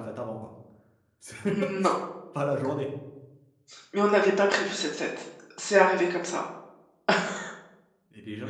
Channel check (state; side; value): identical; both; correlation 1.00